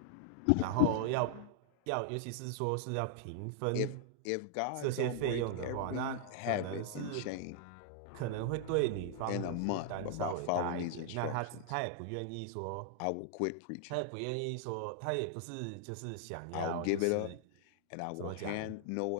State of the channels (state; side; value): different; both; correlation 0.00